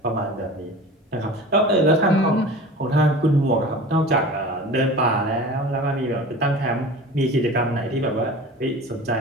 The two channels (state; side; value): normal; both; correlation 0.37